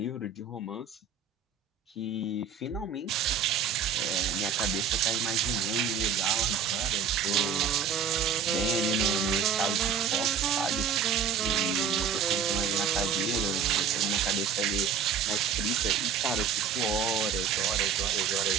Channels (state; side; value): quieter; left; 6.6 dB